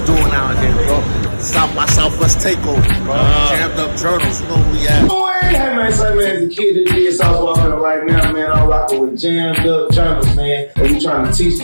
doing out here, bro. South by Southwest takeover, bro. Jammed up journals, you know who we at. Hey man, so man, as a kid that did South walking right now, man, I'm rocking with jammed up journals, man. And we trying to teach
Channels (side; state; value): both; inverted; correlation -1.00